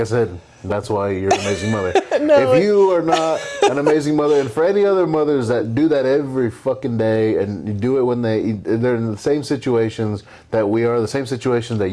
said, that's why you're an amazing mother. If you are not an amazing mother, and for any other mothers that do that every fucking day, and you do it when they're in the same situations that we are, the same situations that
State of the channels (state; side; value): identical; both; correlation 1.00